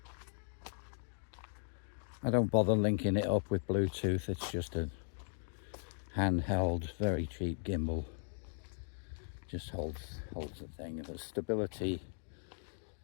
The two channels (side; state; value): right; silent; digital silence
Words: I don't bother linking it up with Bluetooth. It's just a handheld, very cheap gimbal. Just holds the thing. There's stability